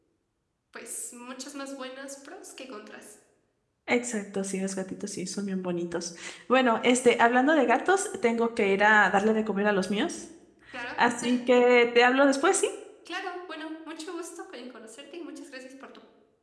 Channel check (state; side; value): identical; both; correlation 1.00